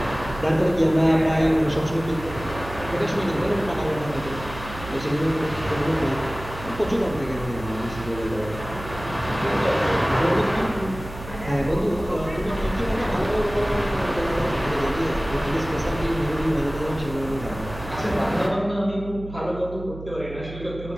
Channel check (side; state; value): right; noise; hum, 12 dB below the sound